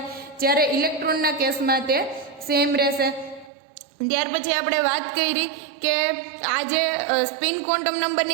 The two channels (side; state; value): left; drops out; at 3.5 s